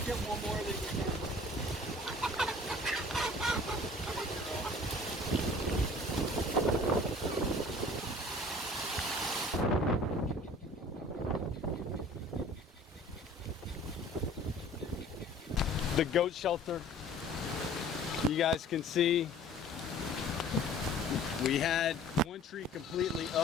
get one more that you can. The goat shelter, you guys can see we had one tree completely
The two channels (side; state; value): both; normal; correlation 0.48